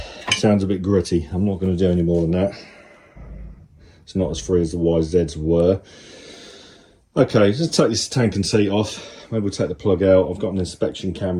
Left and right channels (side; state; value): both; identical; correlation 1.00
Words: Sounds a bit gritty. I'm not going to do any more than that. It's not as free as the YZs were. Okay, let's take this tank and seat off. Maybe we'll take the plug out. I've got an inspection